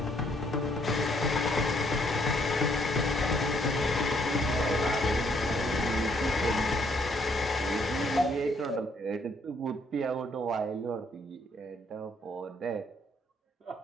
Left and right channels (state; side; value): normal; both; correlation 0.69